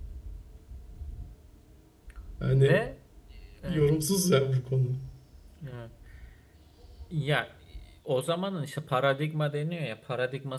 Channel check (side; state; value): both; identical; correlation 1.00